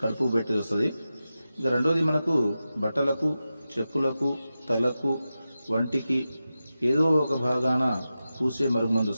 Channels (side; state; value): both; inverted; correlation -0.92